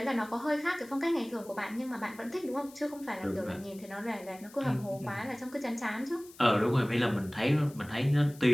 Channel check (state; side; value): noise; left; hiss, 22 dB below the sound